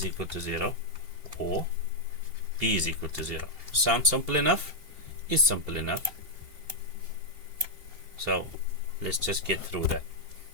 equal to 0 or B is equal to 0. Sounds simple enough? Is simple enough. So let's just get through that.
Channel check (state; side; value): late; left; 2.8 ms